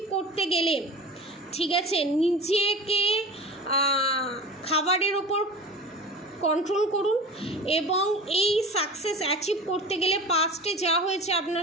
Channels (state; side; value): normal; both; correlation 0.35